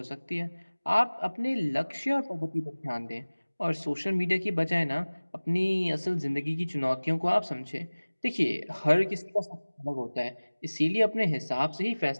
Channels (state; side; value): inverted; both; correlation -1.00